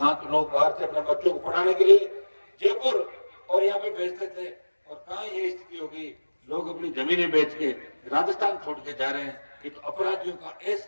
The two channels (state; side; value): inverted; both; correlation -1.00